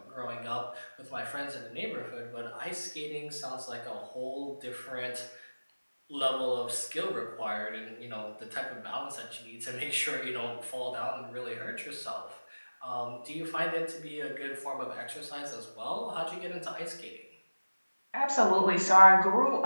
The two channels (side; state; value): both; inverted; correlation -1.00